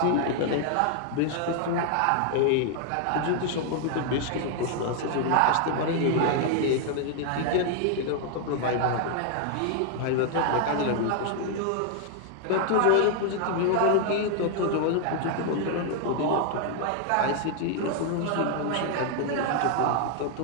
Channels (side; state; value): both; different; correlation 0.00